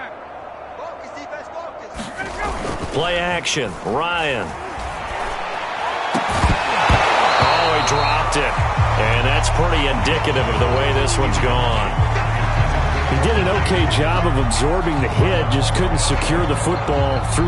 Play action. Ryan. Oh, he dropped it. And that's pretty indicative of the way this one's gone. He did an okay job of absorbing the hit, just couldn't secure the football through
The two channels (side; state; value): both; identical; correlation 1.00